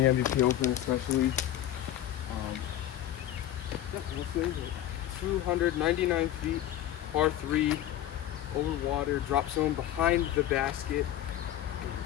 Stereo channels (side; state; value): right; quieter; 12.3 dB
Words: MVP Open, especially. What is it? 299 feet, par 3, over water, drop zone behind the basket.